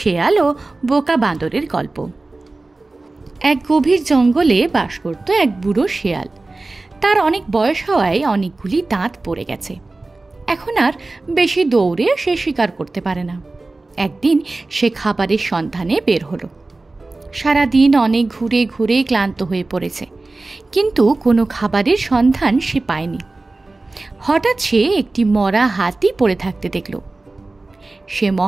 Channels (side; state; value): left; quieter; 3.2 dB